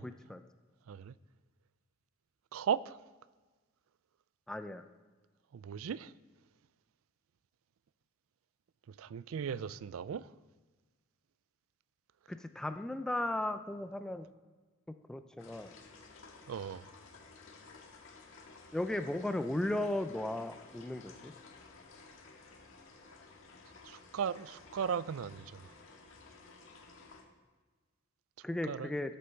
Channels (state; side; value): normal; both; correlation 0.42